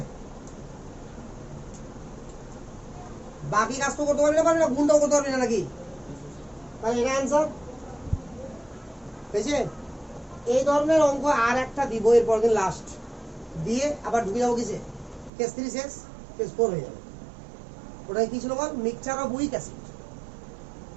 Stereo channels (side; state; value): left; drops out; at 15.3 s